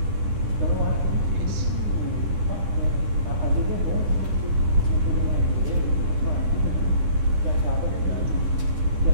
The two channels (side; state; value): left; late; 10 ms